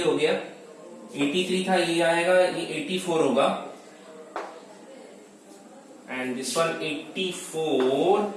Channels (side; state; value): both; identical; correlation 1.00